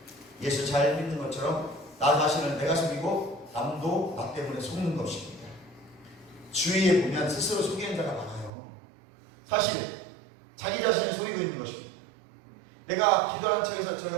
예수 잘 믿는 것처럼 나 자신을 내가 속이고 남도 나 때문에 속는 것입니다. 주위에 보면 스스로 속이는 자가 많아요. 사실 자기 자신을 속이고 있는 것입니다. 내가 기도하는 척에서 저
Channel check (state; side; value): drops out; left; at 8.5 s